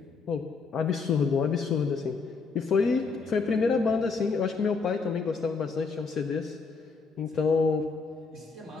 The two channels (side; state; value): right; quieter; 4.7 dB